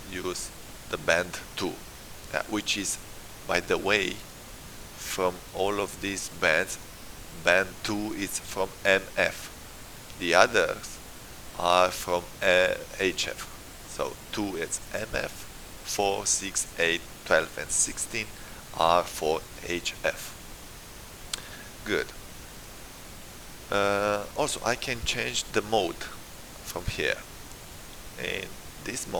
use the band 2, which is, by the way, from all of these bands, band 2 is from MF. The others are from HF. So 2 is MF, 4, 6, 8, 12, and 16 are for HF. Good. Also, I can change the mode from here. In this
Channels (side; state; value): both; identical; correlation 1.00